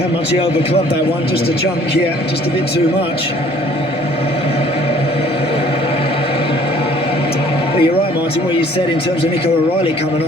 much he overclubbed that one. Just a chunk, yeah, just a bit too much. But you're right, Martin, what you said in terms of Nico O'Reilly coming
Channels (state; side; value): normal; both; correlation 0.56